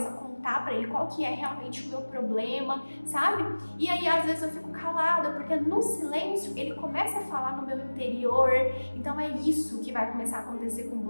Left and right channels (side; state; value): both; inverted; correlation -1.00